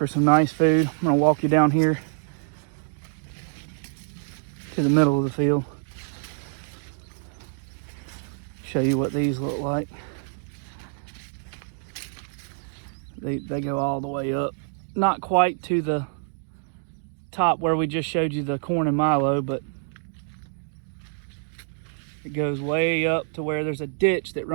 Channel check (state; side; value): silent; left; digital silence